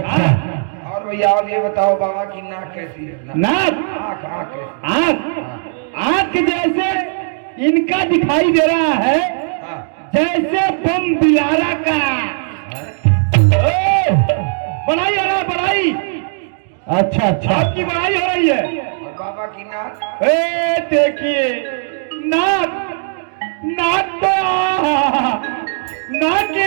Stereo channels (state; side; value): silent; left; digital silence